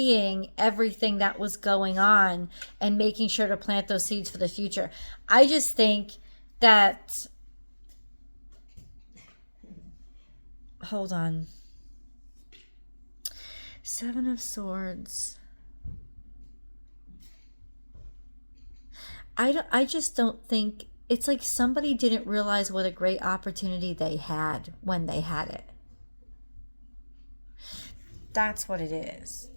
everything that was going on and making sure to plant those seeds for the future. I just think that, hold on. Seven of Swords. I just don't think, it's like somebody didn't realize what a great opportunity they had when they had it. That's what it is.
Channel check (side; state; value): both; inverted; correlation -1.00